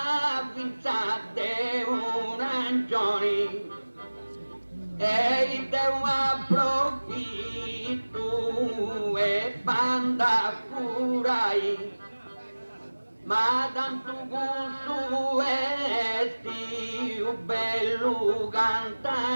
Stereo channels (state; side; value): inverted; both; correlation -1.00